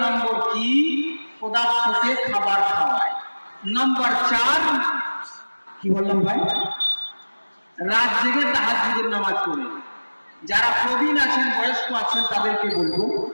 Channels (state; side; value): inverted; both; correlation -1.00